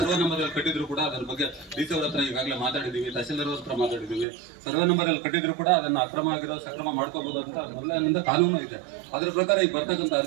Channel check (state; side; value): drops out; left; at 4.2 s